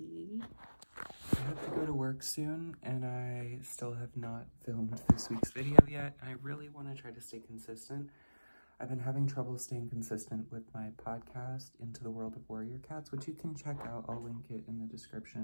I have to go to work soon and I still have not filmed this week's video yet. I really want to try to stay consistent. I've been having trouble staying consistent with my podcast, Into the World of Warrior Cats, which you can check out. I'll link it in the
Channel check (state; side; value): inverted; both; correlation -1.00